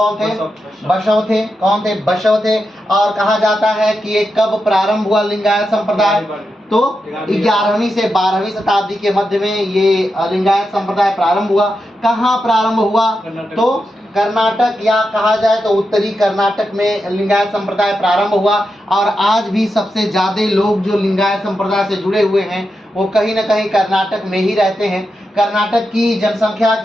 थे, बसव थे। कौन थे, बसव थे। और कहा जाता है कि ये कब प्रारंभ हुआ लिंगायत संप्रदाय, तो 11वीं से 12वीं शताब्दी के मध्य में ये लिंगायत संप्रदाय प्रारंभ हुआ। कहाँ प्रारंभ हुआ, तो कर्नाटक या कहा जाए तो उत्तरी कर्नाटक में लिंगायत संप्रदाय प्रारंभ हुआ। और आज भी सबसे ज्यादा लोग जो लिंगायत संप्रदाय से जुड़े हुए हैं वो कहीं न कहीं कर्नाटक में ही रहते हैं। कर्नाटक की जनसंख्या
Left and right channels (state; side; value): normal; both; correlation 0.87